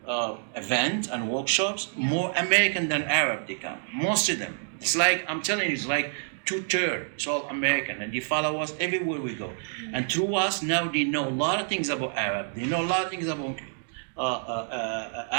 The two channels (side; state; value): left; silent; digital silence